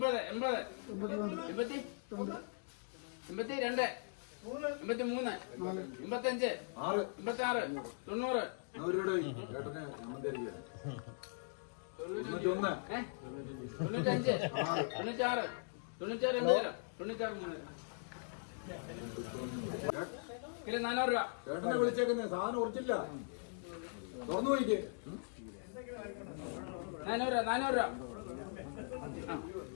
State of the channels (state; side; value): silent; right; digital silence